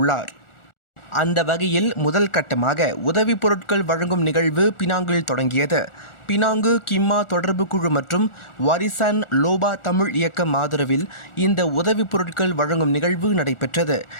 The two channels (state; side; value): late; right; 1.4 ms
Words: அந்த வகையில் முதல் கட்டமாக உதவி பொருட்கள் வழங்கும் நிகழ்வு பினாங்கில் தொடங்கியது. பினாங்கு கிம்மா தொடர்பு குழு மற்றும் வாரிசான் லோபா தமிழ் இயக்கம் ஆதரவில் இந்த உதவி பொருட்கள் வழங்கும் நிகழ்வு நடைபெற்றது.